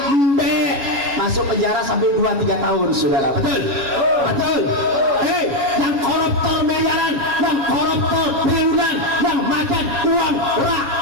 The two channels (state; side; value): late; left; 7.3 ms